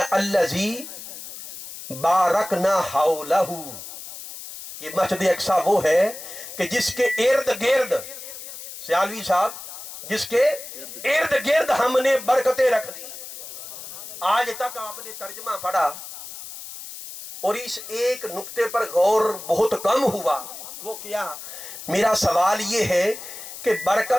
الذی بارکنا حولہ، یہ مسجد اقصیٰ وہ ہے کہ جس کے ارد گرد، سیالوی صاحب، جس کے ارد گرد ہم نے برکتیں رکھ دی۔ آج تک آپ نے ترجمہ پڑھا اور اس ایک نقطے پر غور بہت کم ہوا، وہ کیا؟ میرا سوال یہ ہے کہ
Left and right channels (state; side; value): noise; left; hiss, 12 dB below the sound